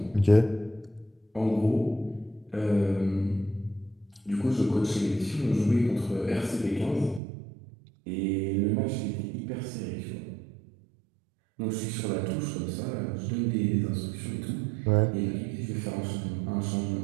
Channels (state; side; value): drops out; left; at 7.2 s